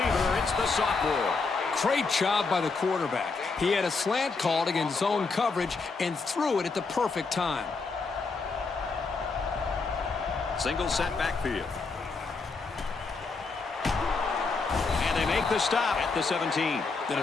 It's the sophomore. Great job by the quarterback. He had a slant called against zone coverage and threw it at the perfect time. Single set backfield. make the stop at the 17. The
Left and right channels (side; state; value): right; quieter; 4.3 dB